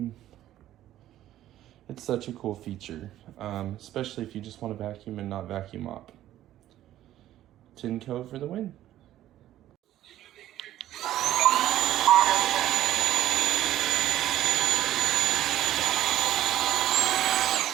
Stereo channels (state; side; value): quieter; left; 13.1 dB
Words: It's such a cool feature, especially if you just want to vacuum and not vacuum mop. Tineco for the win.